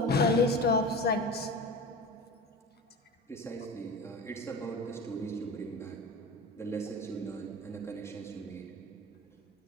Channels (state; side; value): normal; both; correlation 0.31